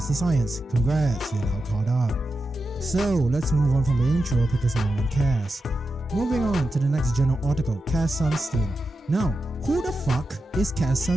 the science. Congrats, you're now caught up. So let's move on from the intro because no one cares. Moving on to the next journal article, Cass Sunstein. Now, who the fuck is Cass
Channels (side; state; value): both; normal; correlation 0.90